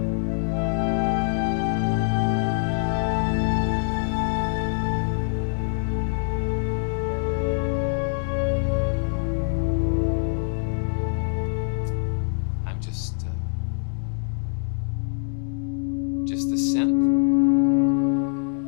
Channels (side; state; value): right; silent; 62 dB below the other